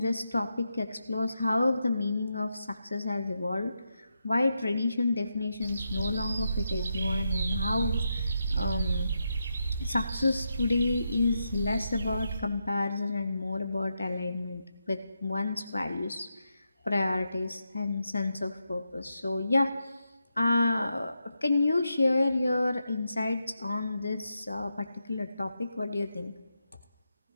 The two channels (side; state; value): both; inverted; correlation -0.85